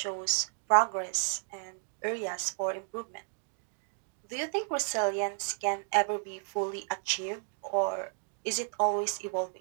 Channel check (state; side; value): silent; left; 56 dB below the other